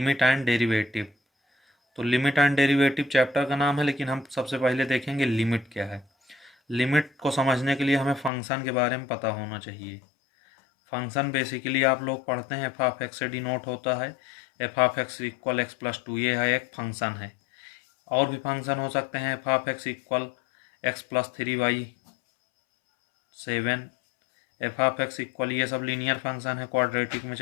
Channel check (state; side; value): drops out; right; at 8.3 s